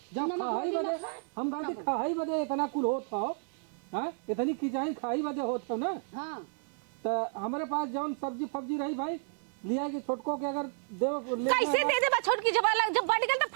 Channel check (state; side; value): silent; left; 57 dB below the other